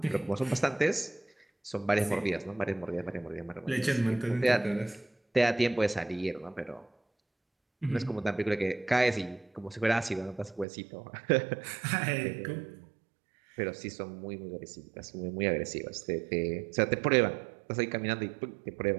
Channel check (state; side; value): drops out; left; at 10.7 s